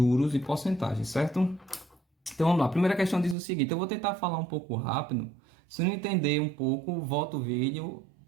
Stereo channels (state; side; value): drops out; left; at 3.4 s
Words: e porcentagem, certo? Então vamos lá, a primeira questão diz o seguinte, eu vou tentar falar um pouco rápido, se não entender um pouco, volta o vídeo,